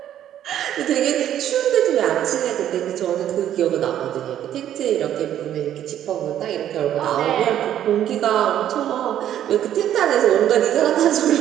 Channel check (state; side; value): quieter; left; 11.0 dB